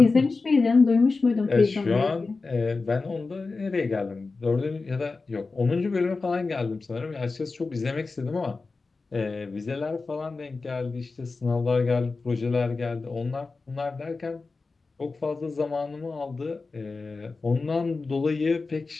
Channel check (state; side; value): quieter; right; 4.0 dB